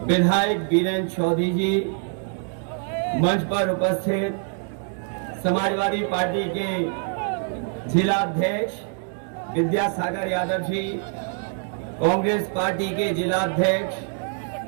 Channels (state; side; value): silent; left; 56 dB below the other